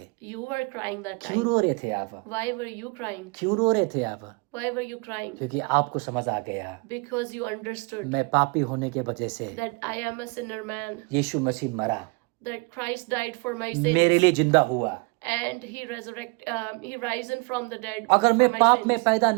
you were crying that क्यों time. रो रहे थे आप? Why were you crying? क्यों रो रहे थे आप? Why were you crying? क्योंकि आपको समझ आ गया, Because you understood मैं पापी होने के वजह से that I am a sinner man, यीशु मसीह मरा, that Christ died for my मेरे sins, लिए जिंदा हुआ. and he risen from the dead अगर for मैं my पाप में sins. पैदा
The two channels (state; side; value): quieter; left; 29.9 dB